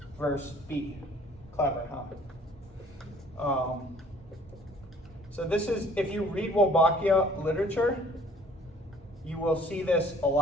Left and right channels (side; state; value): both; normal; correlation 0.55